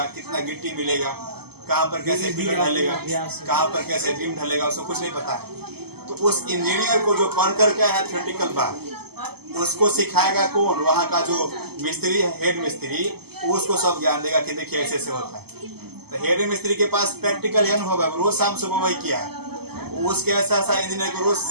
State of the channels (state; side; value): late; left; 0.96 ms